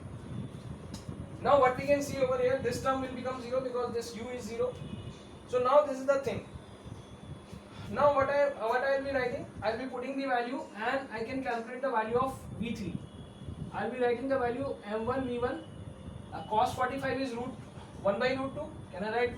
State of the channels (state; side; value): identical; both; correlation 1.00